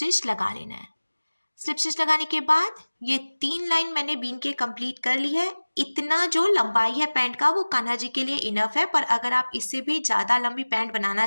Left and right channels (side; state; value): both; inverted; correlation -1.00